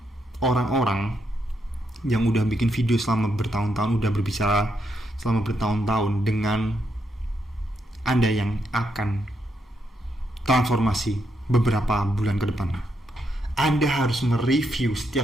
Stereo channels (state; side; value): normal; both; correlation 0.80